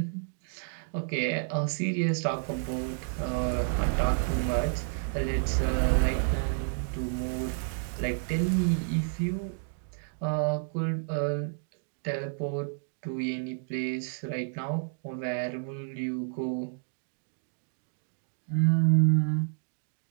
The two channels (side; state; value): left; silent; digital silence